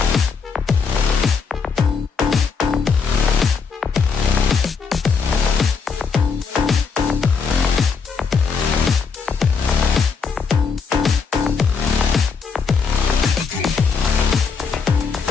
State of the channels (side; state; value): right; quieter; 5.5 dB